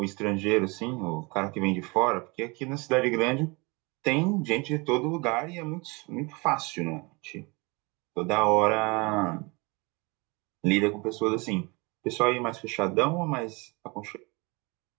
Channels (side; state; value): left; quieter; 27.5 dB